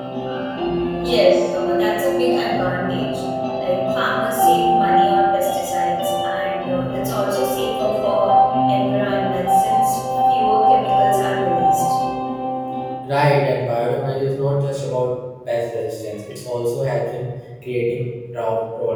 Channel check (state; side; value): identical; both; correlation 1.00